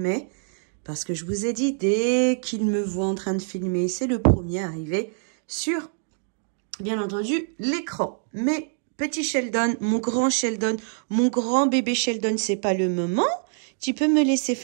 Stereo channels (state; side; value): silent; left; 62 dB below the other